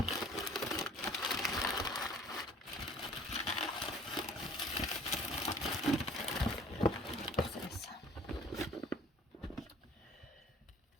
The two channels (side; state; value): both; normal; correlation 0.50